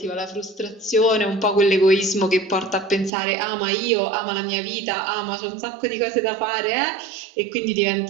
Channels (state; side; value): drops out; left; at 3.1 s